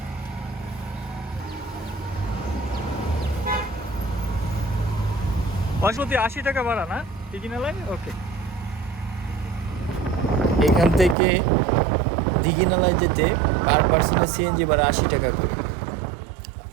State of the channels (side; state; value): left; drops out; at 11.2 s